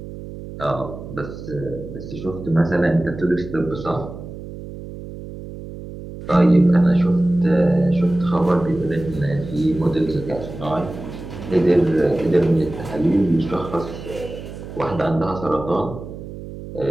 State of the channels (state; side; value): noise; right; hum, 12 dB below the sound